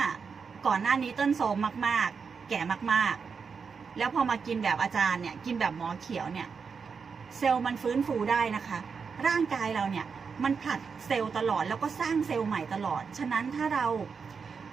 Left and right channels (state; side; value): quieter; left; 5.7 dB